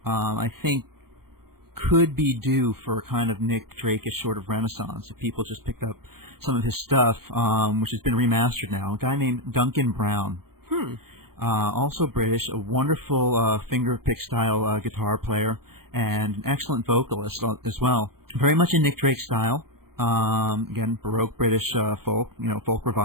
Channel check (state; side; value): late; left; 0.94 ms